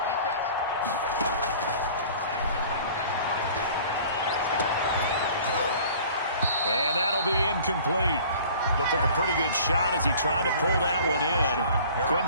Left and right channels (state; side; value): inverted; both; correlation -0.47